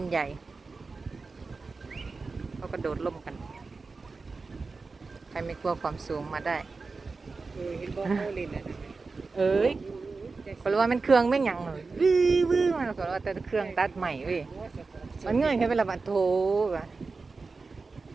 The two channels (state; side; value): quieter; left; 4.1 dB